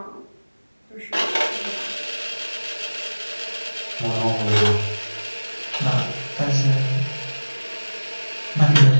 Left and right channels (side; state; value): both; inverted; correlation -1.00